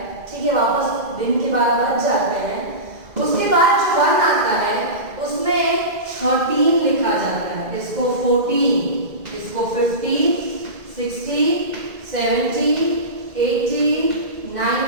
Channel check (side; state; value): left; late; 2.0 ms